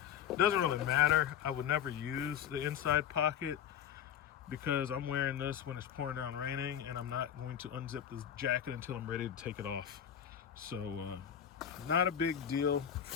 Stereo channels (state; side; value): quieter; right; 9.3 dB